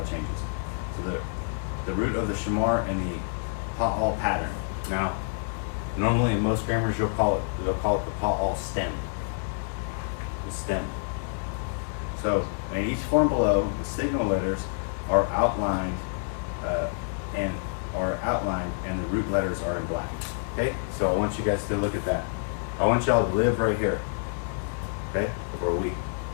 changes. So the root of the shamar and the pa'al pattern. Now, normally in most grammars they'll call it the pa'al stem. The stem. So in each form below, the signal letters are outlined and the root letters are in black. Okay? So I want you guys to look at that. I want y'all to live right here. Okay? For a week.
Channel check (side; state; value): right; silent; digital silence